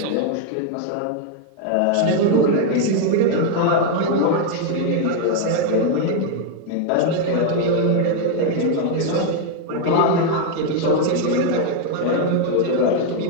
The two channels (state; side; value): different; both; correlation 0.01